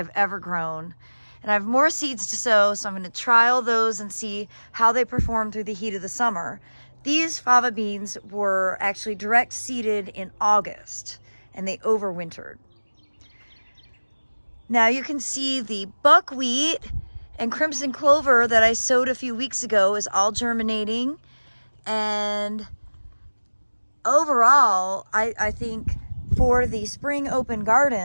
ever grown. And I have more seeds to sow, so I'm going to trial those and see how they perform through the heat of the summer. These fava beans were actually direct seeded in August, and they overwintered. Now you can see the buckwheat and crimson clover that I sowed a few weeks ago is all germinating. And overall, I think for the spring open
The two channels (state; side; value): inverted; both; correlation -1.00